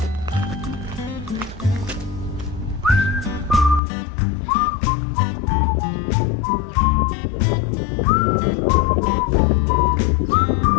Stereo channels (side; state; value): right; drops out; at 3.8 s